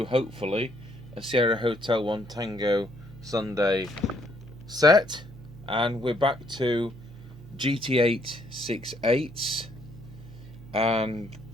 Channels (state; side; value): normal; both; correlation 0.68